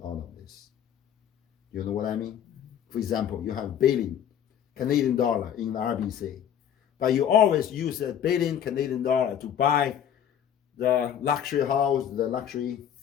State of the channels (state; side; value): quieter; right; 9.3 dB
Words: all of this. You know what I mean? For example, you have $1 billion Canadian dollar in the RBC, but you always use $1 billion Canadian dollar to buy the luxury house, the luxury,